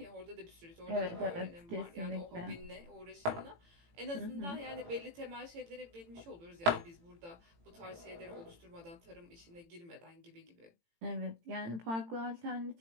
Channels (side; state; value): left; late; 18 ms